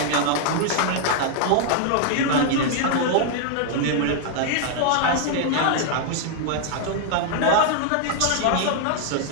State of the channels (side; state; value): both; different; correlation 0.00